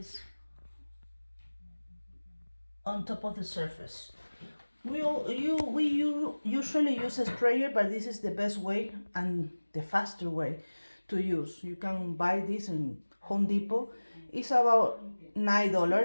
on top of the surface. We usually use a sprayer, but this is the best way and the faster way to use. You can buy this in Home Depot. It's about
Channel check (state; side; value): inverted; both; correlation -1.00